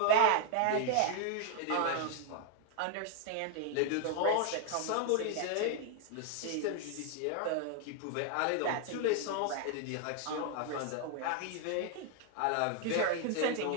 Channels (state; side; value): different; both; correlation 0.00